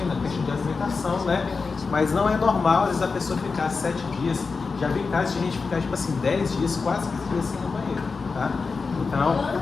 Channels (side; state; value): right; quieter; 4.6 dB